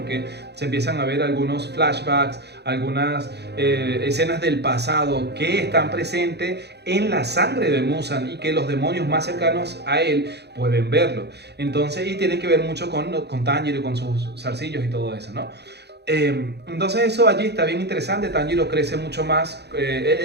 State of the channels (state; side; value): late; left; 0.48 ms